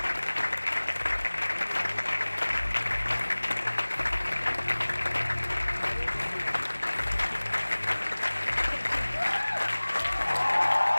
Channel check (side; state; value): both; inverted; correlation -1.00